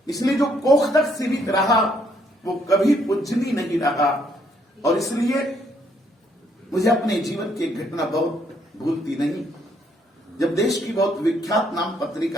इसलिए जो कोख तक सीमित रहा वो कभी पूजनीय नहीं रहा। और इसलिए मुझे अपने जीवन की एक घटना बहुत भूलती नहीं। जब देश की बहुत विख्यात नाम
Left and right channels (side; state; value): both; normal; correlation 0.70